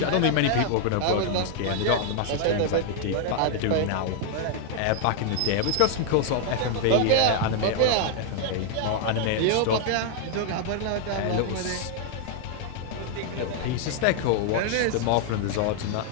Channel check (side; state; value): both; different; correlation 0.00